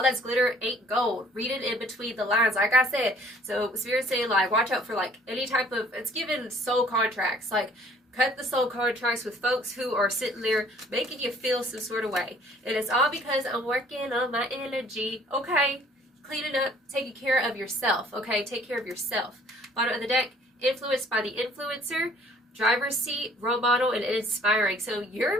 that's glitter ain't gold. Read it in between the lines, like I said. So Spirit's saying, like, watch out for, like, any type of, it's giving soul contracts. Like, cut the soul contracts with folks who are sitting there making you feel some sort of way. And it's all because I'm working on my energy. Okay, cleaning up, taking care of yourself. Okay, take care of yourself. Bottom of the deck, influenced by the influencer. Driver's seat, role model, and inspiring. So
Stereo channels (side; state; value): both; normal; correlation 0.57